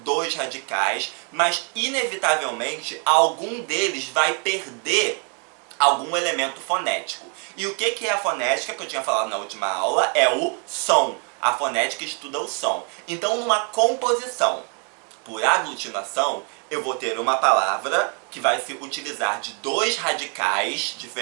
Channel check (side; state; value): left; quieter; 38.1 dB